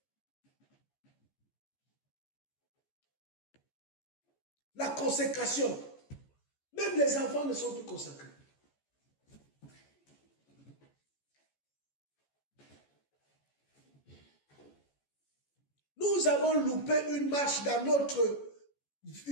La consécration. Même les enfants ne sont plus consacrés. Nous avons loupé une marche dans notre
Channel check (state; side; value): late; right; 14 ms